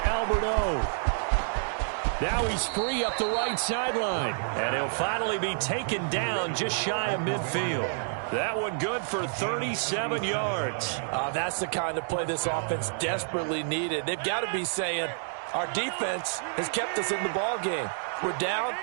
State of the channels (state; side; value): silent; left; digital silence